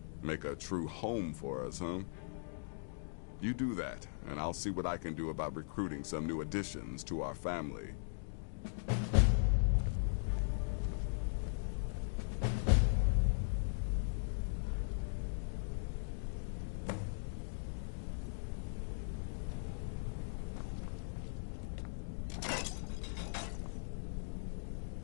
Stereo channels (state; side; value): silent; right; digital silence